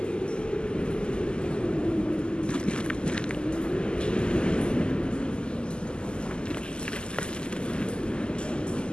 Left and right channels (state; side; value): late; right; 0.048 ms